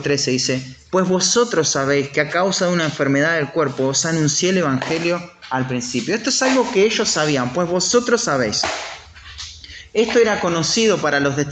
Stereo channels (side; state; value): both; identical; correlation 1.00